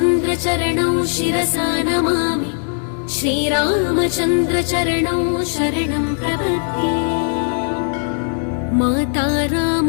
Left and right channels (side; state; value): right; silent; 66 dB below the other